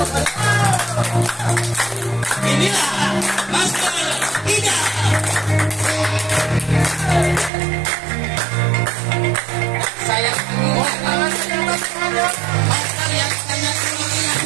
Inilah Master Ida. Saya Master yang sangat luar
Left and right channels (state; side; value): drops out; left; at 7.5 s